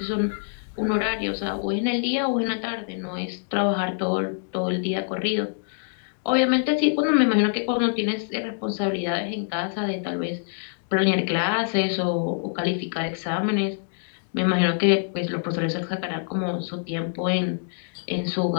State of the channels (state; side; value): silent; right; digital silence